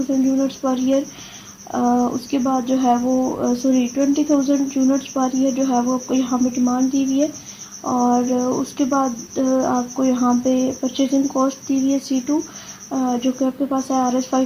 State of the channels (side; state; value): both; identical; correlation 1.00